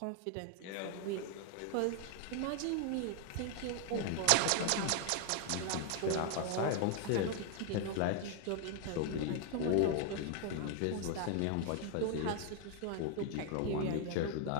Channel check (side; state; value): both; different; correlation 0.00